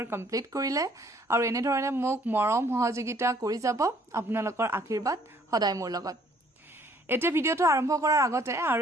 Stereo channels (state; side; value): normal; both; correlation 0.61